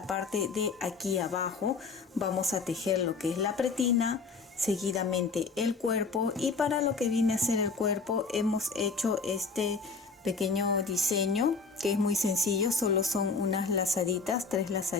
parte de aquí abajo. Vamos a tejer lo que es la pretina, seguidamente el cuerpo, y para lo que viene a ser el cuerpo hemos hecho este pequeño diseño que es muy sencillo. Solo son unas lazaditas, 3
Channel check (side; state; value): right; quieter; 4.6 dB